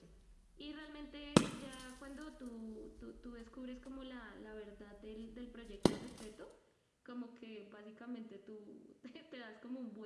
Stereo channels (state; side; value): identical; both; correlation 1.00